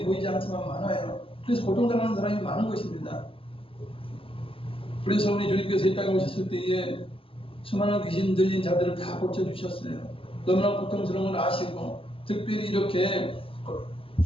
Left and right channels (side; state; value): right; late; 0.26 ms